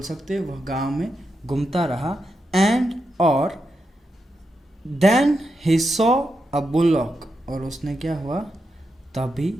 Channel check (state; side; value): normal; both; correlation 0.86